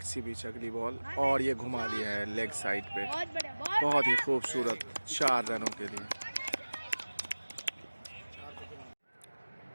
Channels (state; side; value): inverted; both; correlation -1.00